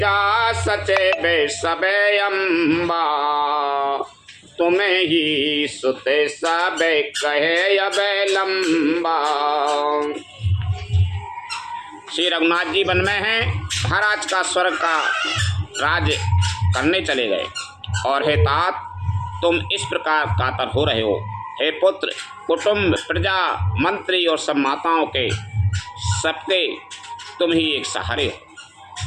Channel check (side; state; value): both; identical; correlation 1.00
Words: सचेबे सबे अम्बा, तुम्हें ही सुते सबे कहे अबे लंबा। श्री रघुनाथ जी वन में हैं, महाराज का स्वर्ग का राज करने चले गए और हे तात तुम इस प्रकार कातर हो रहे हो। हे पुत्र कुटुंब प्रजा मंत्री और सब माताओं के सबके तुम ही एक सहारे हो।